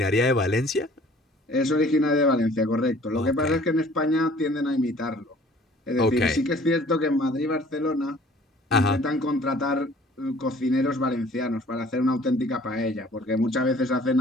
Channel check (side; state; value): both; normal; correlation 0.53